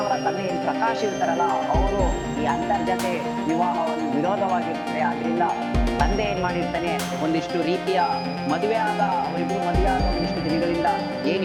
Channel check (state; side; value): identical; both; correlation 1.00